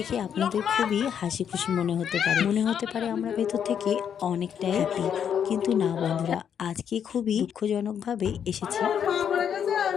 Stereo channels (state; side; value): quieter; right; 8.3 dB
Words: আপনাদের খুবই হাসি খুশি মনে হতে পারে আমরা ভেতর থেকে অনেকটাই হ্যাপি, কিন্তু না বন্ধুরা, আজকে খুবই দুঃখজনকভাবে এসেছি।